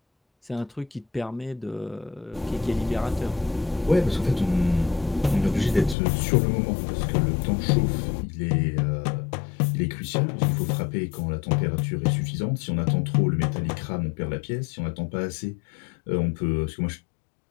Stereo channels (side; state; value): right; drops out; at 6.0 s